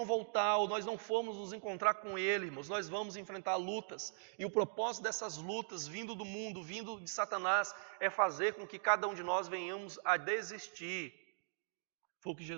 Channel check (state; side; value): silent; left; digital silence